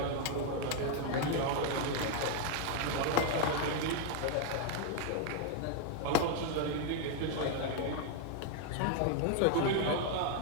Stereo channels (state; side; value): different; both; correlation 0.00